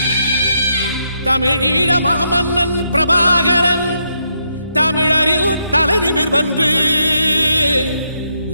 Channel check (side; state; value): both; inverted; correlation -0.79